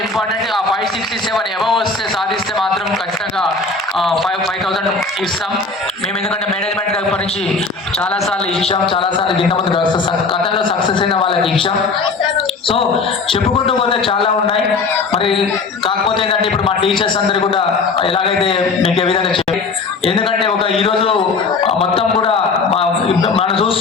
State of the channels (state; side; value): quieter; right; 4.1 dB